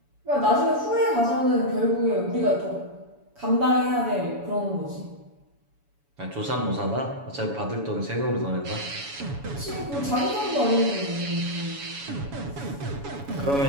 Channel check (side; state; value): left; late; 7.1 ms